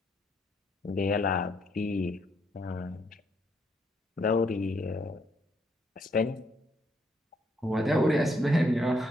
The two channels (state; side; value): normal; both; correlation 0.73